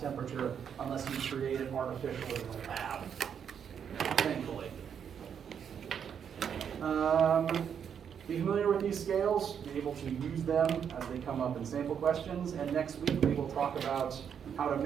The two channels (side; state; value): left; quieter; 7.9 dB